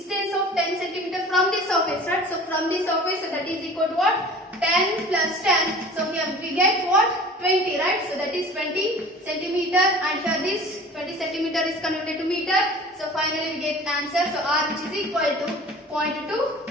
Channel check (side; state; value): both; normal; correlation 0.43